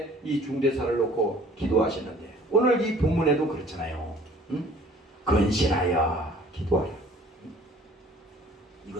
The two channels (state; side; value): normal; both; correlation 0.52